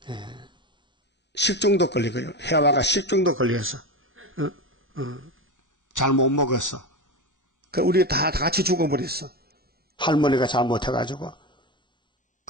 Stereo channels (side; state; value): both; normal; correlation 0.21